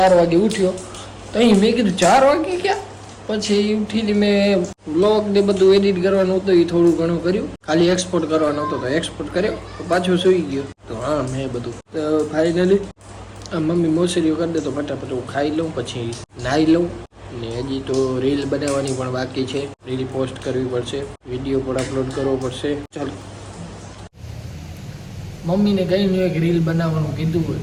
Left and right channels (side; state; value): both; identical; correlation 1.00